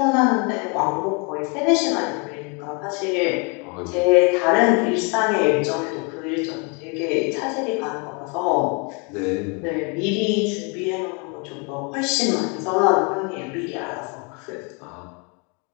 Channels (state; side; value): quieter; right; 33.1 dB